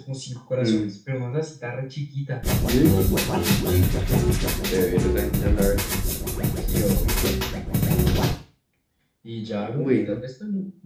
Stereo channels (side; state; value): both; identical; correlation 1.00